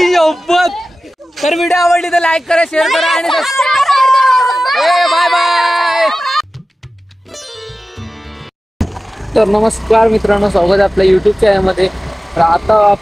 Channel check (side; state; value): both; normal; correlation 0.95